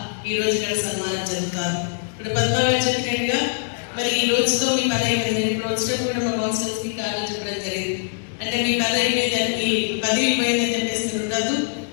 ఈ రోజు ఇక్కడ సన్మానం జరుగుతారు. ఇప్పుడు పద్మాగారు చెప్పినట్టుగా మరి ఈ రోజుతో మీ పని అయిపోయింది. ఇప్పుడు వచ్చినప్పుడు కూడా మా కౌన్సిలర్స్ కి కారణం చెప్పడం జరిగింది. అంటే మీ పని అయిపోయింది, 10 అయిపోయిందని చెప్పేసి ఉండదు,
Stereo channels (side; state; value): right; silent; digital silence